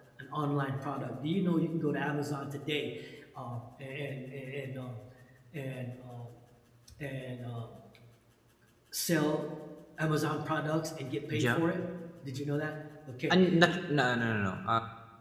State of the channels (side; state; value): both; identical; correlation 1.00